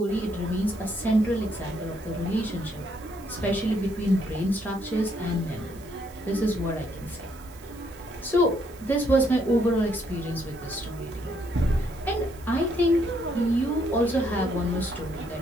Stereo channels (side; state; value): right; noise; hiss, 23 dB below the sound